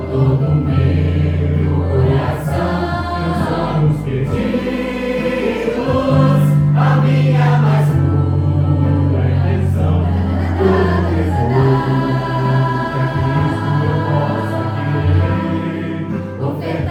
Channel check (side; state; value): both; identical; correlation 1.00